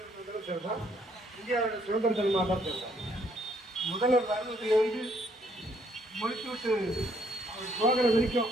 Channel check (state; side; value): normal; both; correlation 0.68